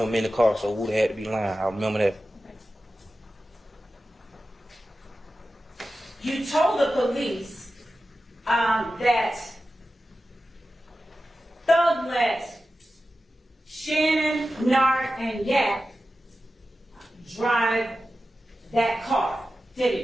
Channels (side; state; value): both; normal; correlation 0.93